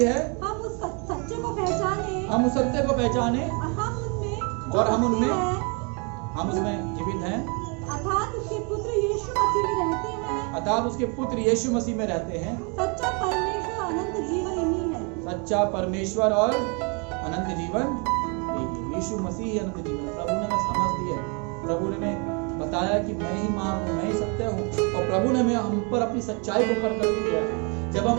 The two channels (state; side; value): quieter; left; 33.8 dB